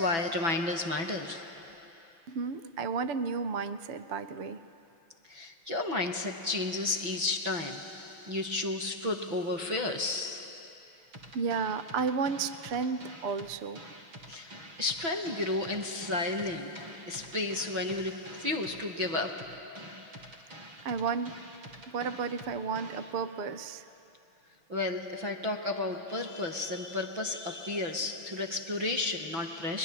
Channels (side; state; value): left; late; 6.0 ms